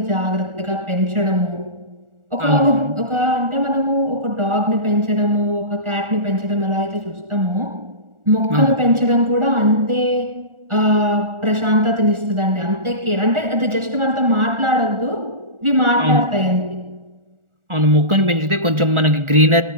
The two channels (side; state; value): left; late; 1.4 ms